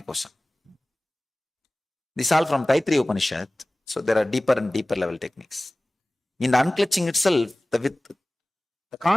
kosha. This is all from Taittiriya Upanishad. So there are deeper and deeper level techniques. In the unclutching itself, the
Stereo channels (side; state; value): both; normal; correlation 0.98